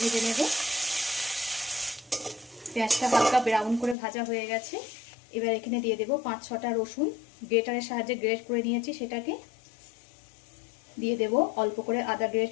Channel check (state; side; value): drops out; right; at 4.0 s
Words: ভেজে নেব। পেঁয়াজটা হালকা ব্রাউন করে ভাজা হয়ে গেছে। এবার এখানে দিয়ে দেব 5-6টা রসুন, গ্রেটারের সাহায্যে গ্রেট করে নিয়েছি সেটাকে। দিয়ে দেব অল্প করে আদা